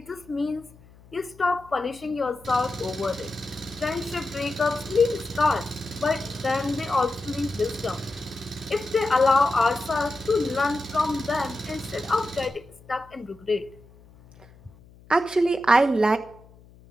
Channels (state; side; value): noise; left; hum, 25 dB below the sound